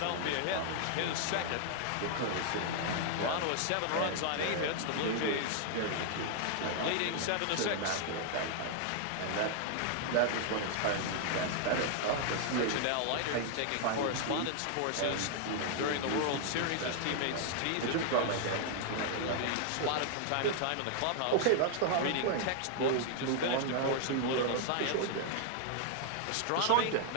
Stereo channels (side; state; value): both; different; correlation 0.00